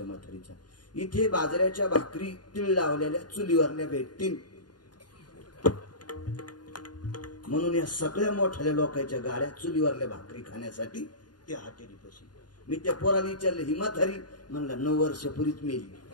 म्हातारीचा. इथे बाजऱ्याच्या भाकरी तीळ लावलेल्या चुलीवरल्या भेटतील म्हणून या सगळ्या मोठ्या लोकांच्या गाड्या चुलीवरल्या भाकरी खाण्यासाठी त्या हॉटेलीपाशी. मी त्या पोराला विचारलं ही म्हातारी? म्हणला 9 वर्षापूर्वीच मेली.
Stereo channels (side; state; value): right; late; 0.70 ms